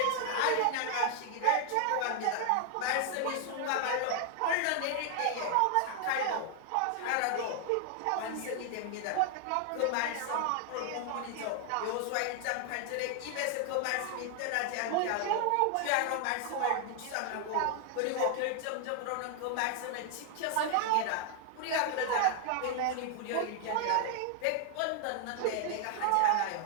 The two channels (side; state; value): both; different; correlation 0.00